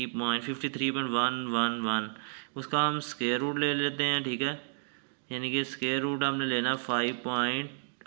उसका हम स्क्वायर रूट ले लेते हैं, ठीक है, यानी कि स्क्वायर रूट हमने लेना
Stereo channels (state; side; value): silent; left; digital silence